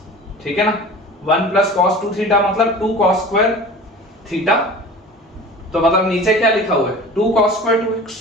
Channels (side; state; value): both; normal; correlation 0.39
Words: ठीक है ना। 1 plus cos 2 थीटा मतलब 2 cos square थीटा, तो मतलब नीचे क्या लिखा हुआ है 2 cos square 2x,